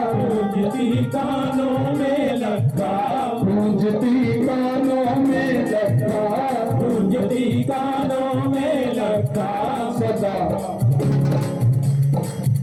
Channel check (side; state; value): both; identical; correlation 1.00